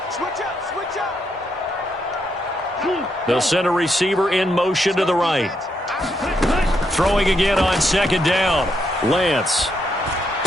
They'll send a receiver in motion to the right. Throwing again on 2nd down. Lance.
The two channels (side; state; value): both; normal; correlation 0.78